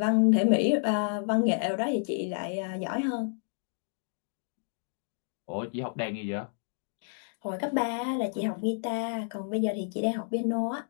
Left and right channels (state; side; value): silent; right; digital silence